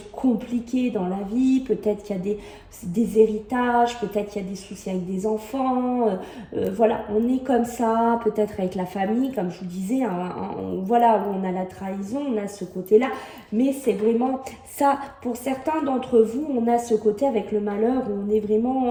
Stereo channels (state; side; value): identical; both; correlation 1.00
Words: compliquées dans la vie, peut-être qu'il y a des héritages, peut-être qu'il y a des soucis avec des enfants, voilà, on est comme ça, peut-être avec la famille, comme je vous disais, hein, voilà, où on a la trahison, on a ce côté-là, mais c'est vraiment ça, pour certains d'entre vous, on a ce côté avec le malheur où on est